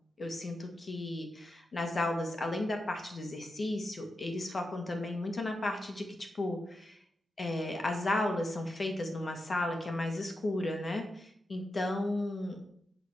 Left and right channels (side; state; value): both; normal; correlation 0.88